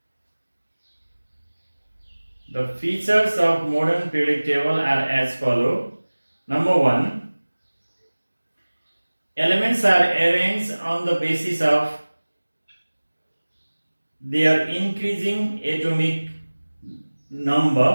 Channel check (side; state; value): both; inverted; correlation -1.00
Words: The features of modern periodic table are as follow. Number 1. Elements are arranged on the basis of their increasing atomic